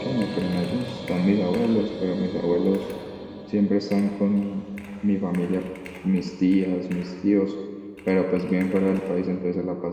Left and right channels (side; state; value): both; identical; correlation 1.00